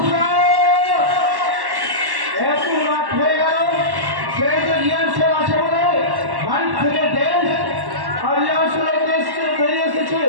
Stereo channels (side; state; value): left; late; 1.1 ms